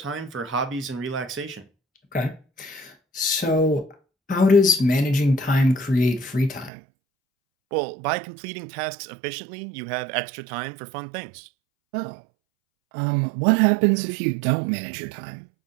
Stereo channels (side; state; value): left; drops out; at 6.7 s